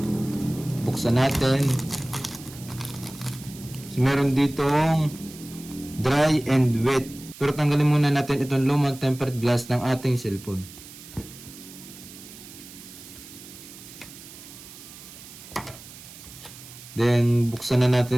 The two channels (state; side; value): noise; right; hiss, 17 dB below the sound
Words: buksan natin. So meron ditong dry and wet. Pero tanggalin muna natin itong lumang tempered glass ng ating cellphone. Then buksan na